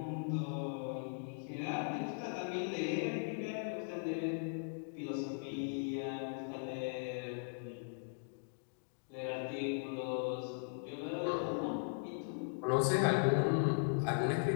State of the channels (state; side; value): silent; right; digital silence